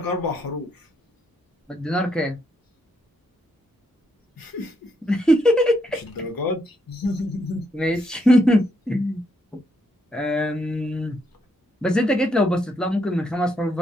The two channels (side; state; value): both; normal; correlation 0.76